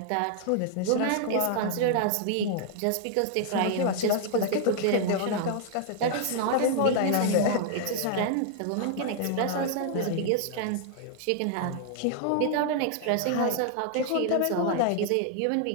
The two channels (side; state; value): both; different; correlation 0.00